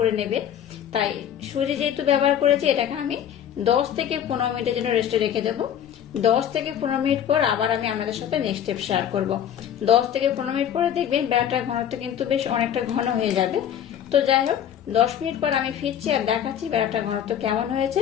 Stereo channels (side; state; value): right; quieter; 9.7 dB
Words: নেবে, তাই সুজি যেহেতু ব্যবহার করেছি এটাকে আমি 10 থেকে 15 মিনিটের জন্য রেস্টে রেখে দেবো। 10 থেকে 15 মিনিট পর আবার আমি আপনাদের সাথে নেক্সট স্টেপ শেয়ার করব। 10 থেকে 15 মিনিট পরে দেখবেন ব্যাটার ঘনত্ব কিন্তু বেশ অনেকটা ঘন হয়ে যাবে। তো যাই হোক, 10 মিনিট পর আমি ফিরছি আর দেখাচ্ছি ব্যাটার ঘনত্ব কেমন হয়েছে